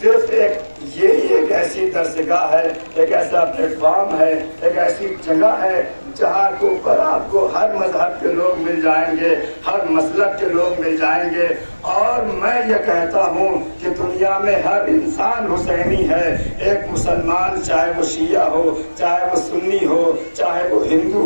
ایک ایسی درسگاہ ہے، ایک ایسا پلیٹ فارم ہے، ایک ایسی جگہ ہے جہاں کے اوپر آپ کو ہر مذہب کے لوگ مل جائیں گے، ہر مسلک کے لوگ مل جائیں گے۔ اور میں یہ کہتا ہوں کہ دنیا میں ہر انسان حسینی ہے، ایک مسلمان چاہے وہ شیعہ ہو، چاہے وہ سنی ہو، چاہے وہ ہندو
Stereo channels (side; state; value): both; inverted; correlation -1.00